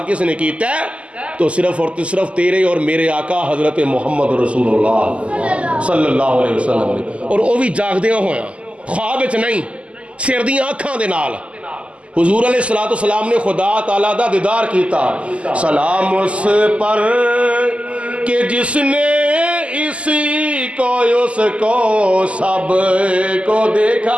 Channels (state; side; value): late; left; 0.058 ms